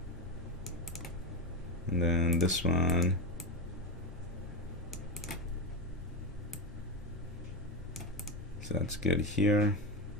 And then this one, so that's good here.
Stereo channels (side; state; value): both; normal; correlation 0.15